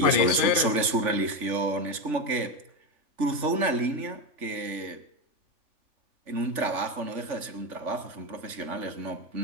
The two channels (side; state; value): left; late; 3.5 ms